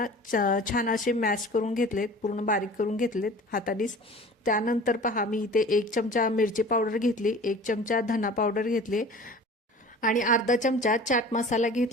छान असे मॅश करून घेतलेत, पूर्ण बारीक करून घेतलेत हातानेच। त्यानंतर पहा मी इथे 1 चमचा मिरची पावडर घेतली, 1 चमचा धना पावडर घेतली आणि अर्धा चमचा चाट मसाला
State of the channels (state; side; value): normal; both; correlation 0.42